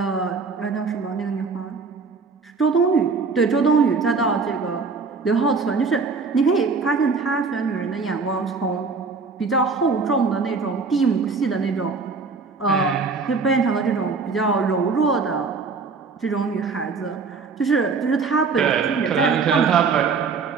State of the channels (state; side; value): quieter; left; 4.6 dB